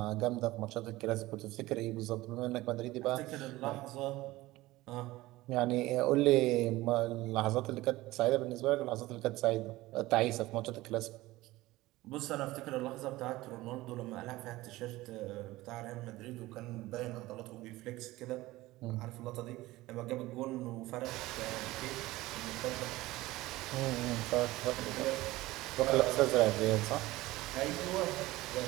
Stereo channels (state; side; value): quieter; left; 18.4 dB